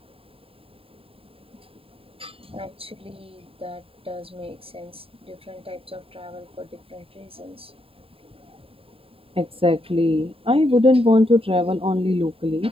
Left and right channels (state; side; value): late; left; 0.27 ms